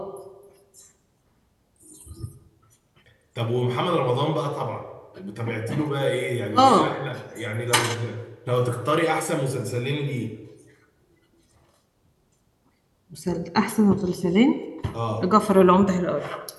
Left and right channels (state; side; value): identical; both; correlation 1.00